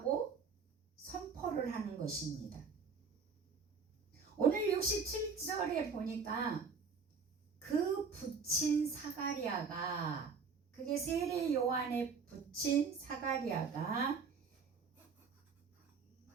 선포를 하는 것입니다. 오늘 67절에 보니까 그 붙인 사가랴가, 그게 세례 요한의 붙인 사가랴가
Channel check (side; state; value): left; quieter; 5.3 dB